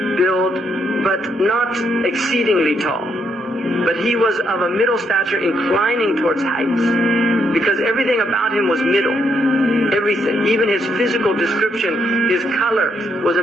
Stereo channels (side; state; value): both; normal; correlation 0.75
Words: build, but not exceedingly tall. But he was of a middle stature inclining towards height, because everything about him was middle. Everything, even his physical description, his color was a